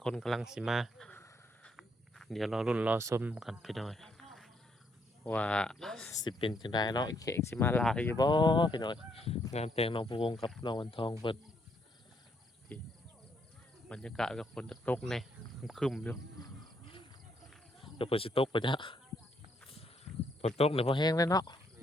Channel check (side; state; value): both; normal; correlation 0.73